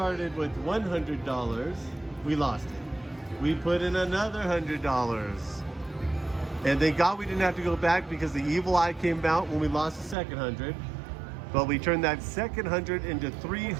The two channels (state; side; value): drops out; left; at 10.2 s